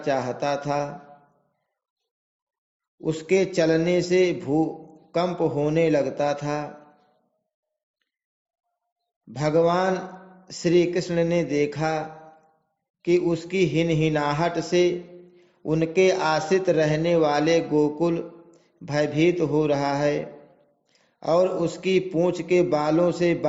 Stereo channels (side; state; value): both; identical; correlation 1.00